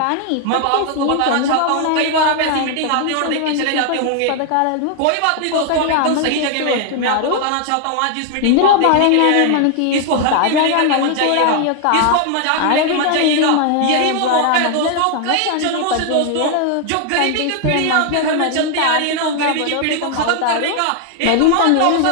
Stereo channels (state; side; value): different; both; correlation 0.00